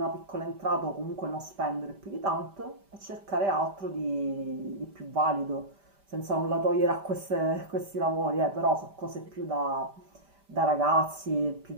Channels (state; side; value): late; left; 5.1 ms